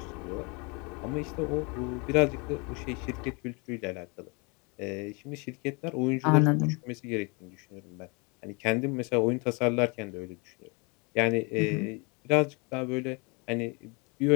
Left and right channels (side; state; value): right; quieter; 30.6 dB